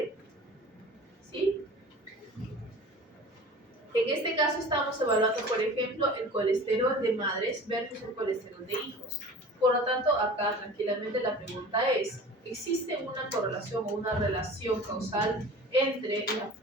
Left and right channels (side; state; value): both; normal; correlation 0.40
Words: ¿Sí? En este caso estamos evaluando, por ejemplo, el colesterol de madres versus el colesterol de hijos. Por lo tanto, acá tranquilamente la pregunta es, ¿existe una correlación o una relación causal entre